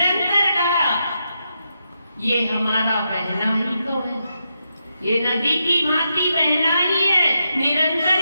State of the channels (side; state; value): both; inverted; correlation -0.84